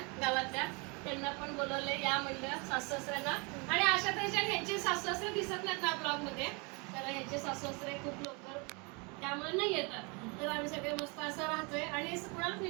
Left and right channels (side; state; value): left; quieter; 30.9 dB